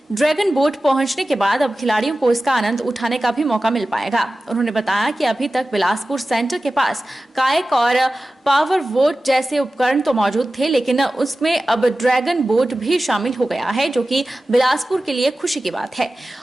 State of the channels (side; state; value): both; normal; correlation 0.95